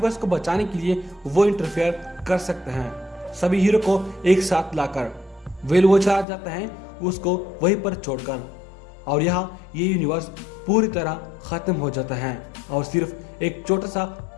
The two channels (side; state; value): right; drops out; at 6.2 s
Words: को बचाने के लिए वो इंटरफेयर कर सकते हैं। सभी हीरो को एक साथ लाकर वो चला जाता है उसको वहीं पर छोड़कर, और यहाँ ये यूनिवर्स पूरी तरह खत्म हो जाता है और सिर्फ एक छोटा सा